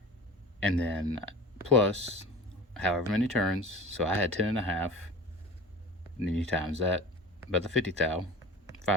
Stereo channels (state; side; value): normal; both; correlation 0.37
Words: And then plus however many turns. So I had 10.5. And then you times that by the 50 thou,